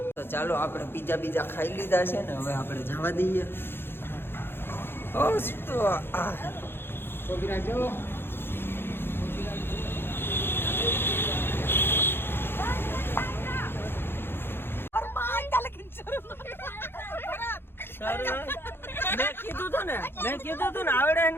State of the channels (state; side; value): late; right; 0.11 ms